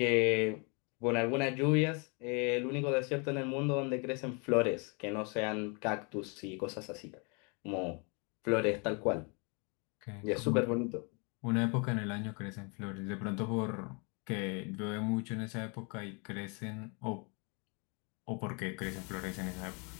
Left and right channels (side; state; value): right; quieter; 33.7 dB